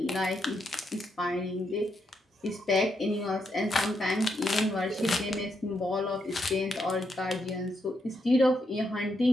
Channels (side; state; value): both; normal; correlation 0.80